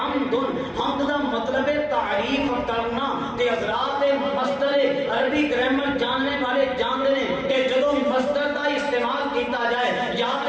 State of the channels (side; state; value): both; identical; correlation 1.00